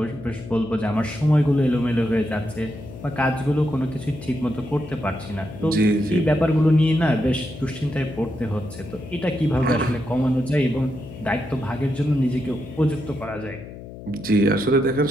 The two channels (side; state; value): left; noise; hum, 14 dB below the sound